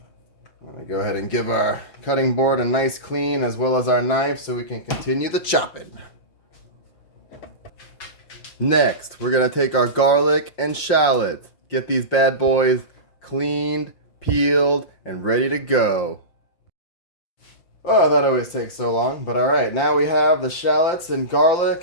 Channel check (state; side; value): late; right; 5.7 ms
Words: I'm going to go ahead and give our cutting board a nice clean as well as our knife so we can continue the chopping. Next, we're going to take our garlic and shallots. Get these bad boys cleaned, peeled, and ready to go. Oh, that always takes so long, but alright. Now we have the shallots and